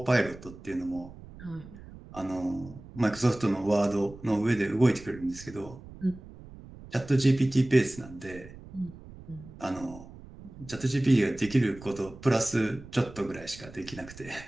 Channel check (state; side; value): noise; right; rumble, 17 dB below the sound